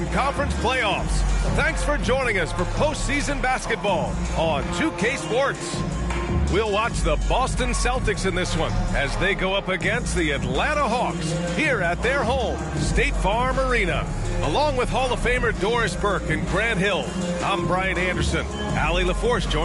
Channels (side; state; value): both; identical; correlation 1.00